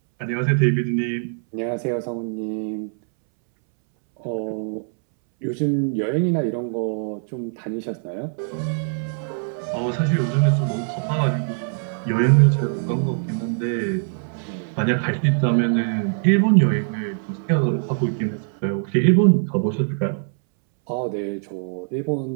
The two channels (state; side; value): silent; left; 64 dB below the other